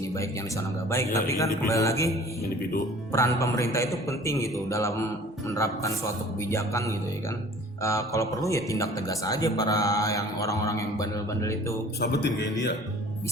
baik yang di sana nggak baik, tapi kan kembali lagi Individu. peran pemerintah itu penting gitu dalam menerapkan suatu kebijakan gitu ya kan. Kalau perlu ya tindak tegas aja para yang orang-orang yang bandel-bandel itu, Sabetin kayak dia.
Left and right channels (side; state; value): both; normal; correlation 0.48